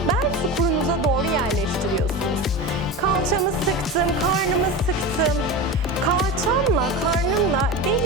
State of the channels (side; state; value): both; normal; correlation 0.25